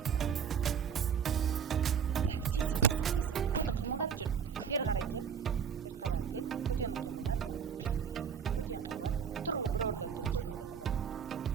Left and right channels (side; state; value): left; quieter; 7.2 dB